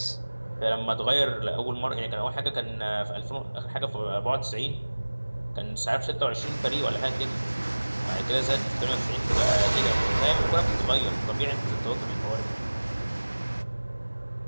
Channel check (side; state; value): both; inverted; correlation -1.00